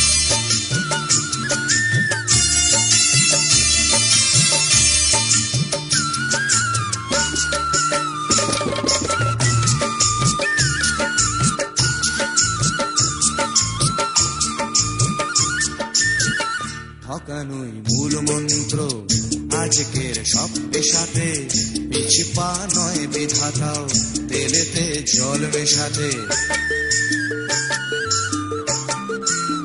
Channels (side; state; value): both; identical; correlation 1.00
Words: ঠকানোই মূল মন্ত্র আজকের সব পেশাতে, পিছু পা নয় বিধাতাও তেলেতে জল মেশাতে।